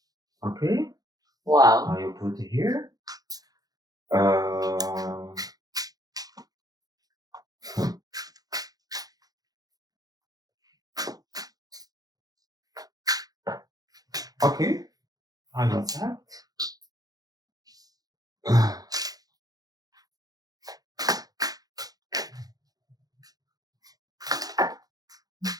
Okay. Wow. I will put it here. Okay. I accept.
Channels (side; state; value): left; late; 0.18 ms